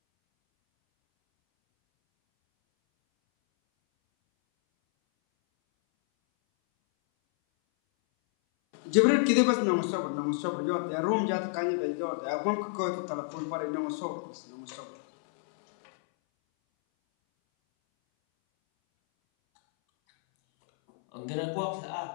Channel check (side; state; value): right; silent; 58 dB below the other